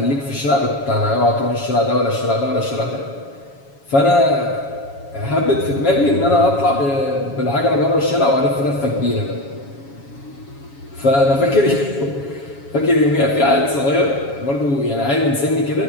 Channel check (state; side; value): late; right; 7.2 ms